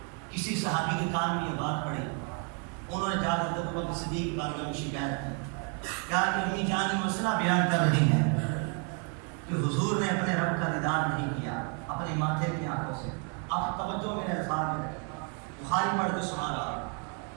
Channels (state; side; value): quieter; left; 38.7 dB